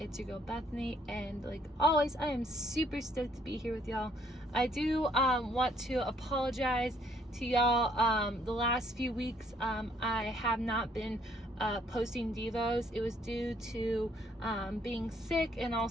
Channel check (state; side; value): normal; both; correlation 0.66